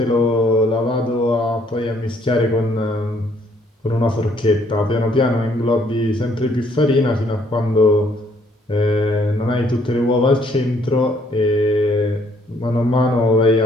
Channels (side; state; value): both; normal; correlation 0.66